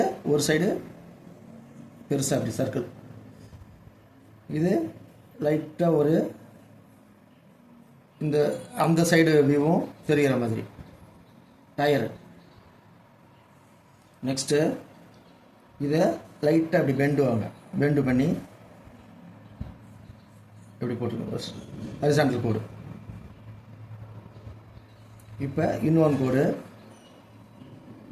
ஒரு சைடு பெருசாக அப்படி சர்க்கிள். இது லைட்டாக ஒரு இந்த அந்த சைடு வியூவும் தெரிகிற மாதிரி டயரு. நெக்ஸ்ட்டு இதை லைட்டாக அப்படி பெண்டு பண்ணி எப்படி போட்டுருங்க. ஹரிசாண்டல் கோடு. இப்போ இன்னொன்று கோடு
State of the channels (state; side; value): identical; both; correlation 1.00